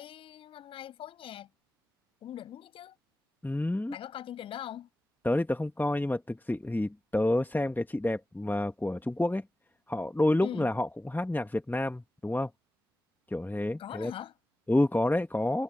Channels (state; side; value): normal; both; correlation 0.95